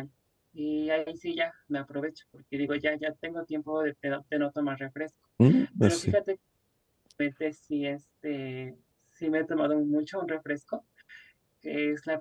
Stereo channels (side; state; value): both; identical; correlation 1.00